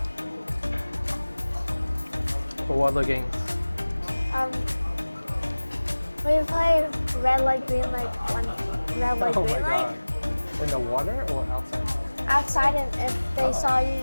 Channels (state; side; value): inverted; both; correlation -1.00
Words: For what other games? We play red light, green light, one red light, Oh green my light. god. In the water or outside? Outside, and if they saw you